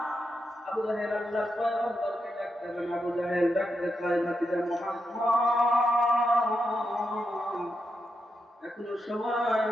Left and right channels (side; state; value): both; normal; correlation 0.85